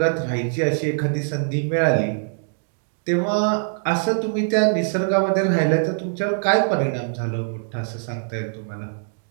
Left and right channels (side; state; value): left; silent; digital silence